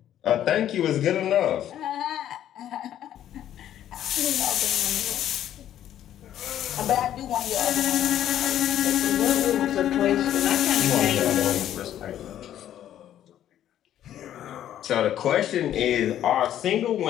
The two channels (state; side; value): quieter; right; 11.3 dB